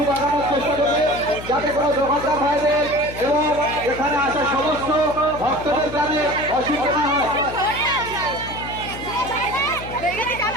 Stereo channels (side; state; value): left; noise; hum, 12 dB below the sound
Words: বাগানোর চেষ্টা করবে, যাতে কোনো দোকানদার ভাইদের এবং এখানে আসা সমস্ত ভক্তদের যাতে অসুবিধা না হয়।